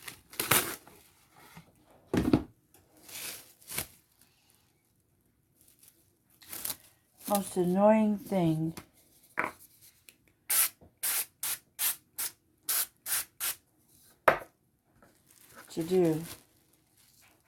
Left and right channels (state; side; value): identical; both; correlation 1.00